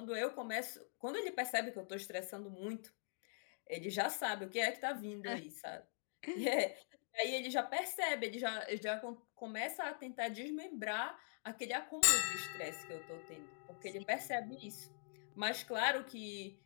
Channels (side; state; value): right; silent; digital silence